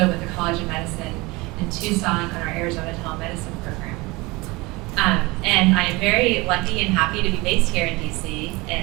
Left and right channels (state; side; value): quieter; left; 23.5 dB